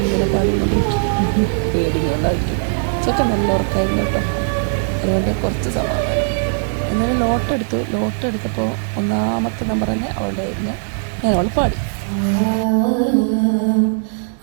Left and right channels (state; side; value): silent; left; digital silence